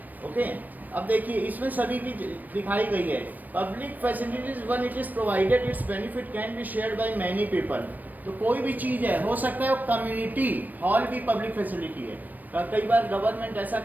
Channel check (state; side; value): late; left; 0.085 ms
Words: Okay, अब देखिए इसमें सभी की दिखाई गई है। Public facilities one it is provided it's benefit can be shared by many people. तो कोई भी चीज़ है, हो सकता है वो कम्युनिटी हॉल भी पब्लिक फैसिलिटी है। कई बार गवर्नमेंट ऐसा